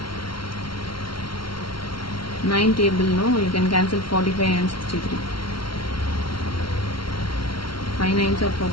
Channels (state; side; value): late; right; 0.74 ms